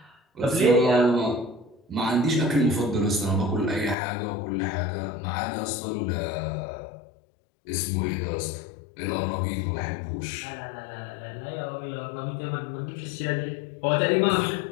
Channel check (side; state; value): right; drops out; at 4.0 s